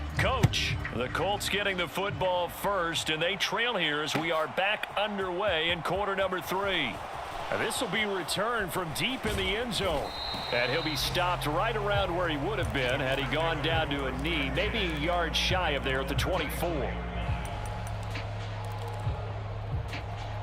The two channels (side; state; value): both; identical; correlation 1.00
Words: Coach, the Colts getting the football first, and they trail here as we are back underway in quarter number 3. This will be returned from deep in the end zone. And he'll be stopped right around where he would have been had he gone down to a knee, maybe a yard shy of there at the 24.